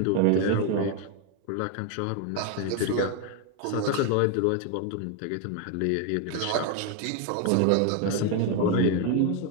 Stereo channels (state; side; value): different; both; correlation 0.01